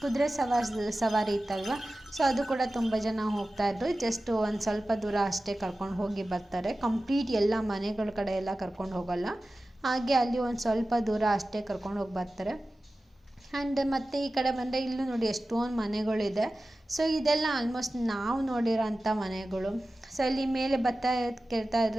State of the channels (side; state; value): both; normal; correlation 0.95